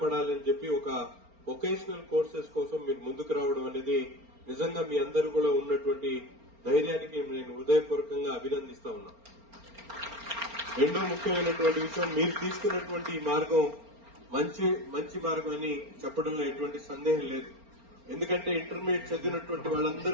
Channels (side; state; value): left; late; 4.4 ms